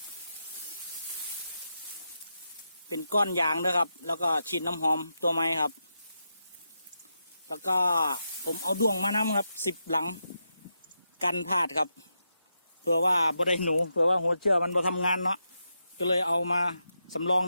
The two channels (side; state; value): both; inverted; correlation -0.86